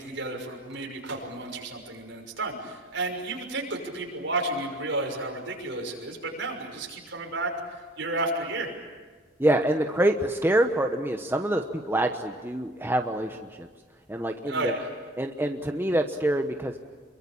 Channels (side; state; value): both; normal; correlation 0.54